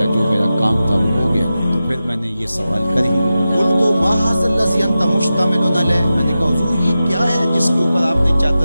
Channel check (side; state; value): both; inverted; correlation -0.93